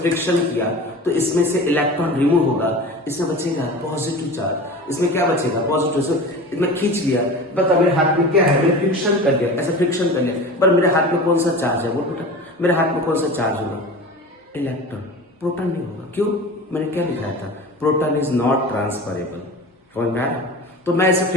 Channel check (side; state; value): both; normal; correlation 0.35